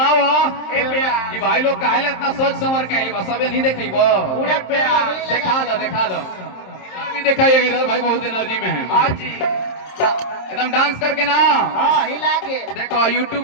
ए प्यार ये भाई लोग काहे ले इतना सोच समझ के आइल बा सबे नहीं देखइबो पूरा प्यार दिखा दो भी दिखाइएगा इधर भाई बहुत एनर्जी में है हाँ जी एकदम डांस करके ना हां हिला के देखो यूट्यूब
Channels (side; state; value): right; late; 27 ms